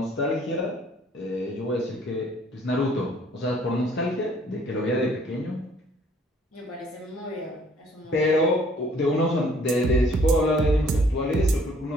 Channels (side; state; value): both; normal; correlation 0.60